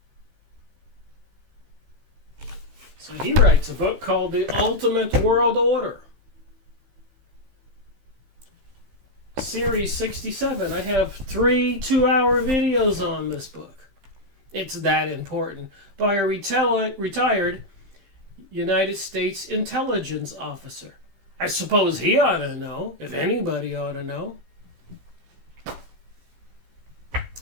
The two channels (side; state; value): left; late; 15 ms